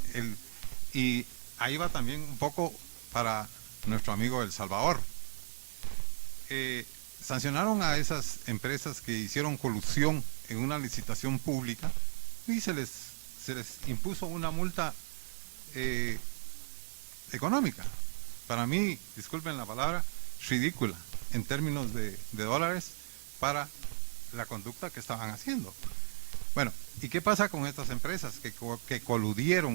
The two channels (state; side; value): silent; left; digital silence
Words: y ahí va también un poco para nuestro amigo El Salvador. Sancionaron a esas empresas que hicieron colusión en una licitación pública y se se les impuso una multa económica. Para mí, disculpen la palabra, ridícula en términos de dólares para la conducta que estaban haciendo. Bueno, ¿y qué pasa con estas empresas que